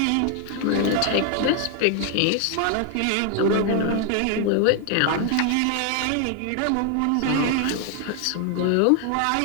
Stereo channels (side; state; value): both; different; correlation 0.00